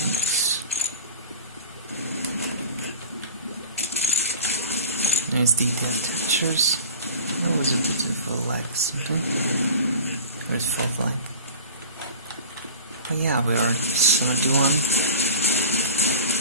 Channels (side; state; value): both; inverted; correlation -0.37